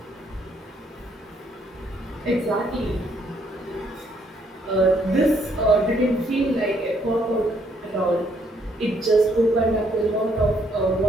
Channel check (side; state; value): both; normal; correlation 0.69